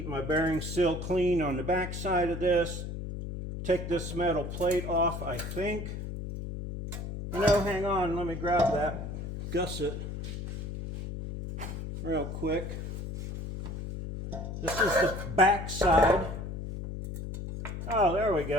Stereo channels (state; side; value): noise; left; hum, 7 dB below the sound